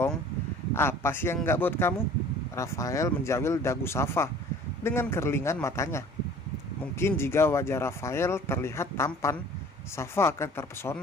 Apa sih yang nggak buat kamu? Rafael menjawil dagu Safa dengan kerlingan matanya. Mungkin jika wajah Rafael terlihat tampan, Safa akan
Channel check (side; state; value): both; normal; correlation 0.48